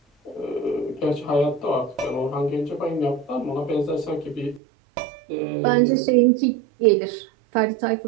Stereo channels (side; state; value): left; drops out; at 4.6 s